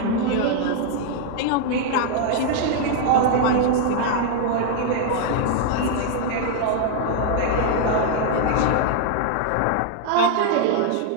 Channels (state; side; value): different; both; correlation 0.00